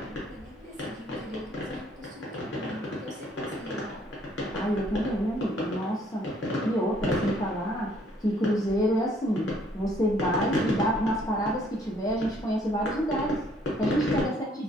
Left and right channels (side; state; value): both; normal; correlation 0.63